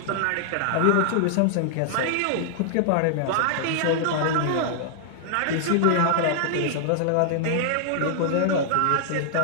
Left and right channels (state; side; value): different; both; correlation -0.01